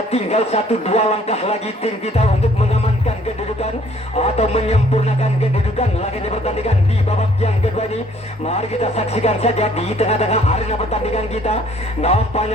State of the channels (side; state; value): both; normal; correlation 0.60